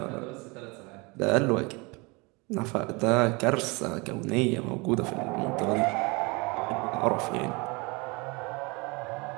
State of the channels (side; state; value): left; quieter; 27.4 dB